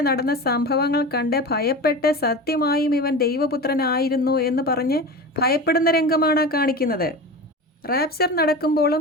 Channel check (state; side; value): normal; both; correlation 0.29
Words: നടന്ന സംഭവങ്ങൾ കണ്ട് ഭയപ്പെട്ട് സത്യമായും ഇവൻ ദൈവപുത്രനായിരുന്നു എന്ന് പറഞ്ഞ് ഭയപ്പെടുന്ന രംഗമാണ് കാണിക്കുന്നത്. റാപ്ചർ